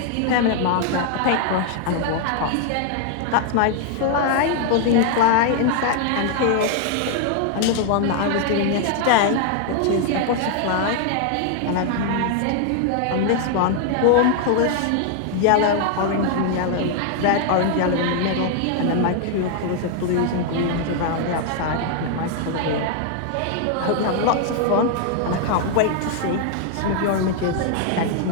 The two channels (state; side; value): different; both; correlation 0.00